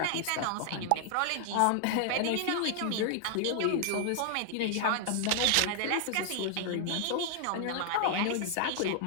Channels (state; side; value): different; both; correlation 0.00